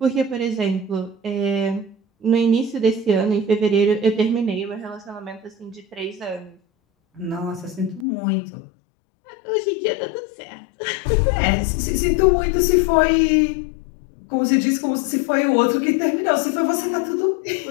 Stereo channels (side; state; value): right; drops out; at 8.1 s